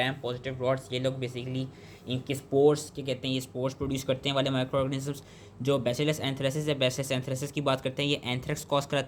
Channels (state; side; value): identical; both; correlation 1.00